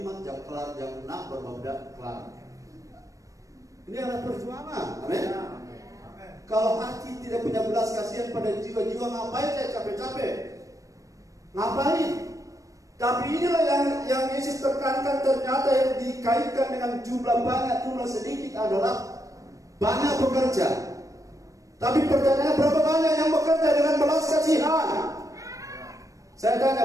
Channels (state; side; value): late; left; 0.16 ms